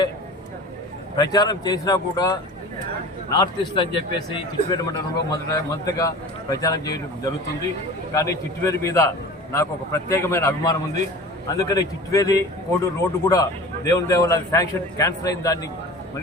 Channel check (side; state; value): both; normal; correlation 0.38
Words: ప్రచారం చేసినా కూడా నార్త్ ఈస్ట్ అని చెప్పేసి చిట్వేలు మండలంలో మొదటగా ప్రచారం చేయడం జరుగుతుంది. కానీ చిట్వేలు మీద నాకు ఒక ప్రత్యేకమైన అభిమానం ఉంది. అందుకని చిట్వేలి కోడూరు రోడ్డు కూడా దేవుని దేవాల శాంక్షన్ క్యాన్సిల్ అయిన దాన్ని